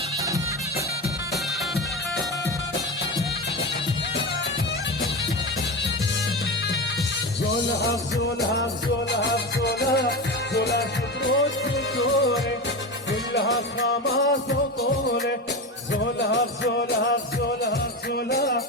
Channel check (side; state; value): both; normal; correlation 0.22